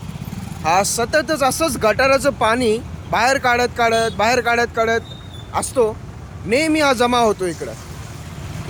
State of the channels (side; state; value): both; identical; correlation 1.00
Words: हा सततच असंच गटाराचं पाणी बाहेर काढत असतो. नेहमी हा जमा होतो इकडं.